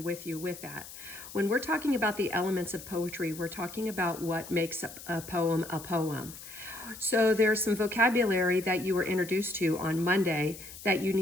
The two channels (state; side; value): noise; left; hiss, 14 dB below the sound